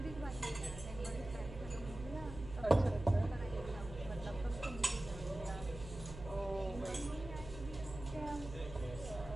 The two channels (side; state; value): right; noise; hum, 11 dB below the sound